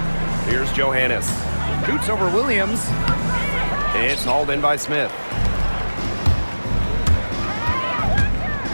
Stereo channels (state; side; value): inverted; both; correlation -1.00